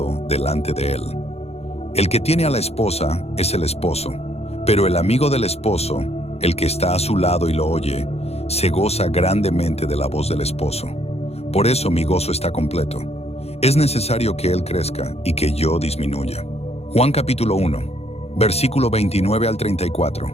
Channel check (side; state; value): right; late; 0.30 ms